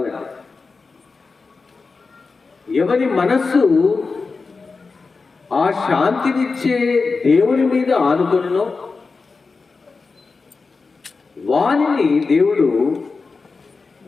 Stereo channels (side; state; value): right; quieter; 4.3 dB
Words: ఎవరి మనస్సు ఆ శాంతినిచ్చే దేవుని మీద ఆనుకొనునో వానిని దేవుడు